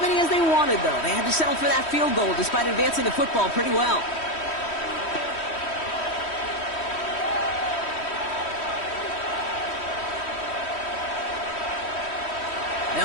many as they wanted, though. They had to settle for that field goal despite advancing the football pretty well.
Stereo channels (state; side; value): late; right; 3.1 ms